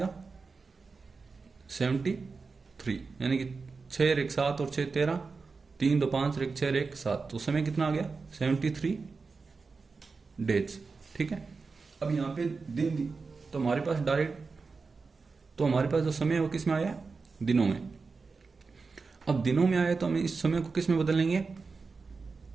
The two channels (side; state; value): left; quieter; 4.5 dB